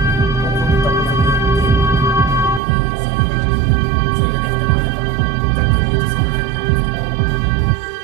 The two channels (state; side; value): drops out; left; at 2.6 s